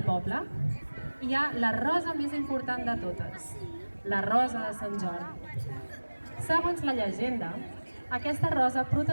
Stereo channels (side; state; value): both; inverted; correlation -1.00